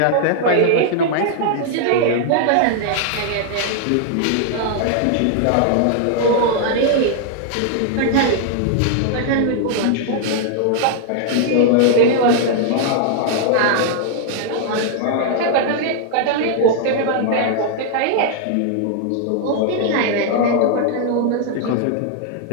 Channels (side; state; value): both; different; correlation 0.00